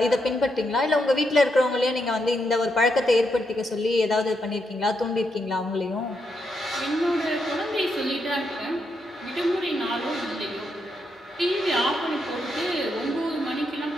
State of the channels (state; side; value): normal; both; correlation 0.81